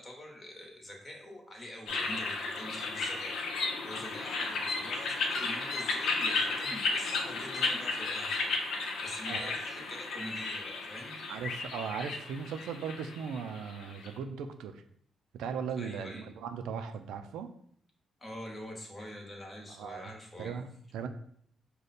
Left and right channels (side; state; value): both; normal; correlation 0.65